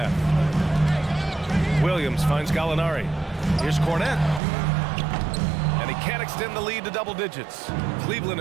Williams finds Gallinari. Here's Cornette. And he can't extend the lead to double digits. Cleveland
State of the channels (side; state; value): left; drops out; at 4.4 s